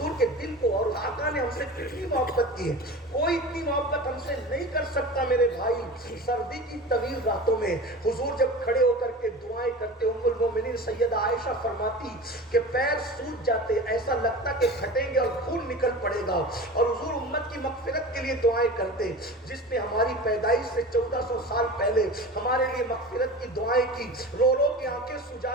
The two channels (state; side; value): normal; both; correlation 0.33